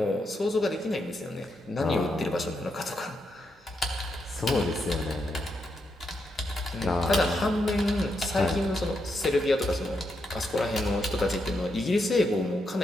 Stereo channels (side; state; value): both; normal; correlation 0.82